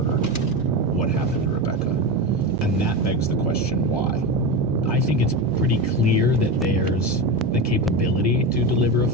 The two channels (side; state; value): both; normal; correlation 0.19